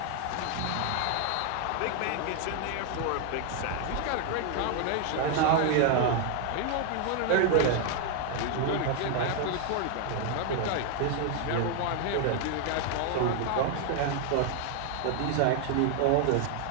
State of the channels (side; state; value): both; different; correlation 0.00